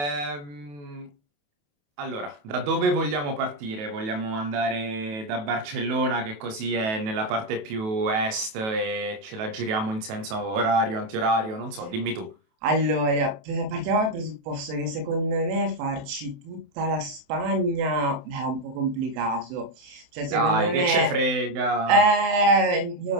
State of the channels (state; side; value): late; left; 28 ms